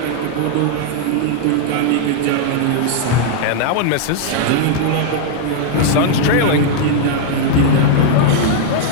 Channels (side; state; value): both; different; correlation -0.01